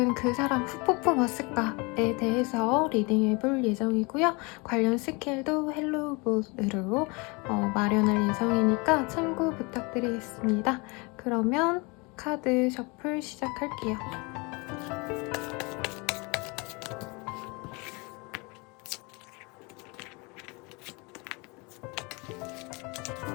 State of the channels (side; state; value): right; quieter; 28.3 dB